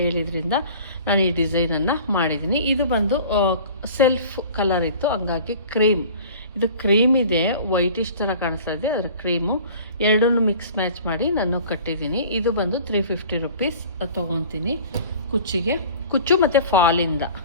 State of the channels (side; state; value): both; inverted; correlation -0.45